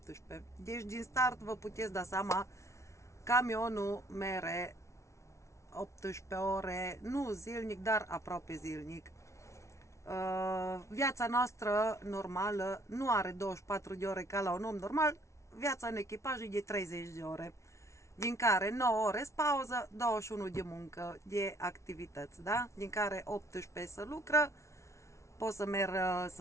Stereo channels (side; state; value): right; late; 0.14 ms